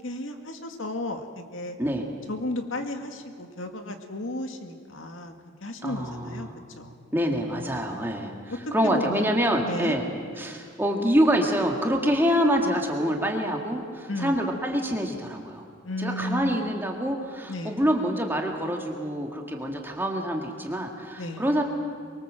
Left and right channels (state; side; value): normal; both; correlation 0.65